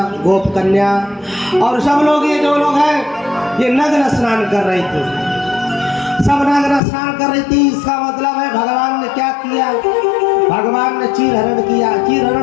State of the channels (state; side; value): drops out; right; at 6.8 s